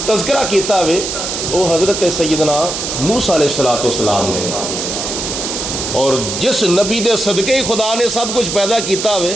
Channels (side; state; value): right; noise; hiss, 4 dB below the sound